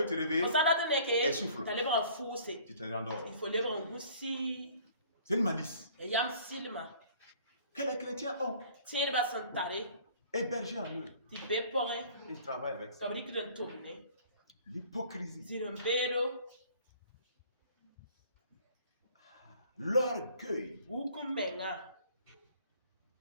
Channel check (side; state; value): both; inverted; correlation -0.53